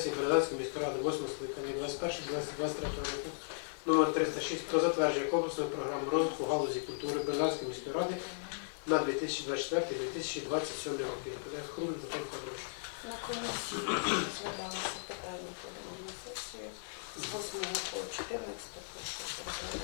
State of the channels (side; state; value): right; silent; digital silence